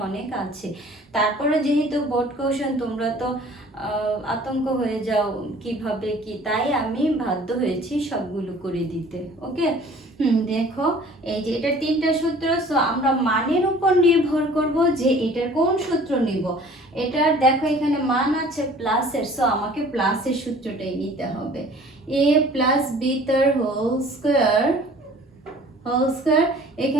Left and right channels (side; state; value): both; normal; correlation 0.50